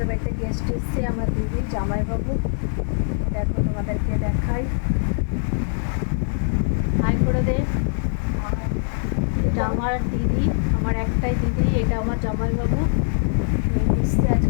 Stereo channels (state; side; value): silent; right; 60 dB below the other